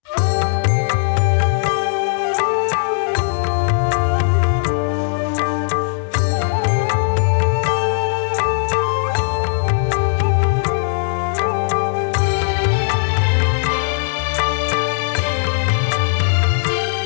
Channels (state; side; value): silent; right; digital silence